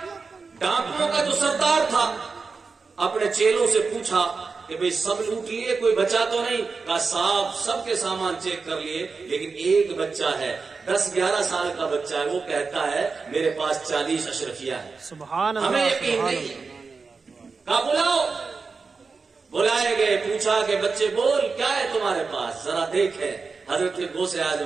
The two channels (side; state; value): left; quieter; 4.6 dB